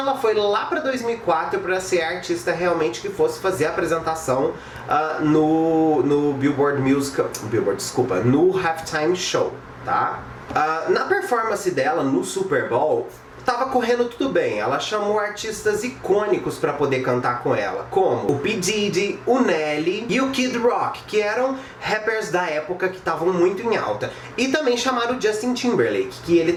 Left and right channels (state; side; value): identical; both; correlation 1.00